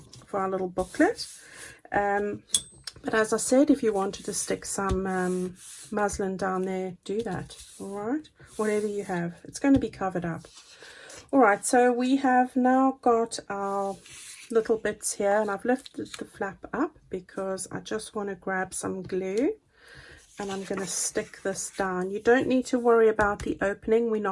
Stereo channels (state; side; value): identical; both; correlation 1.00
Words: for our little booklet. But as I said, if you wanted to stick some muslin down there, do that. All right, whatever you have, it's going to be covered up. All right, so we have now got our little bits here, and I've lifted the flap up because I just want to grab some glue, and I'm going to stick this down. You don't need to worry about the opening. We're